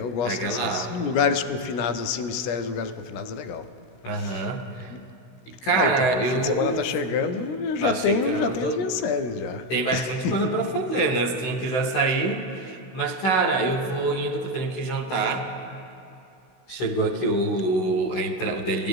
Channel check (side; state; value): right; late; 16 ms